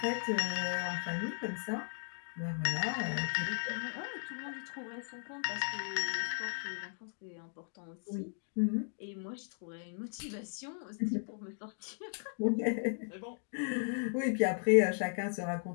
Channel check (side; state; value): right; silent; 53 dB below the other